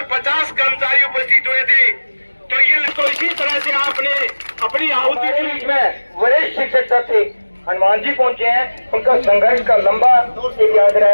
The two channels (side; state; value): both; inverted; correlation -1.00